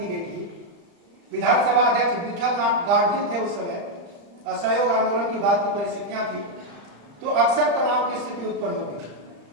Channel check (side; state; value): left; late; 35 ms